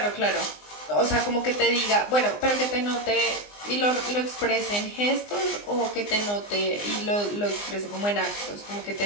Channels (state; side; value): late; right; 20 ms